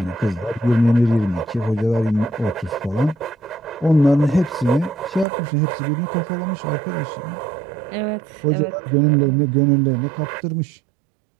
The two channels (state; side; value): drops out; left; at 5.2 s